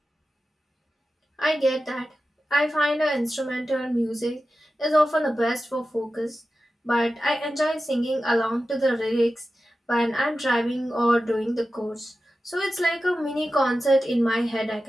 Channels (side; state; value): both; normal; correlation 0.93